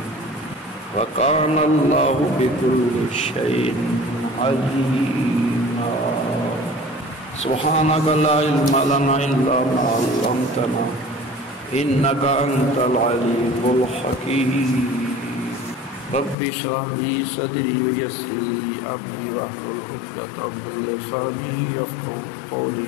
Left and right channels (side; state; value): right; drops out; at 16.4 s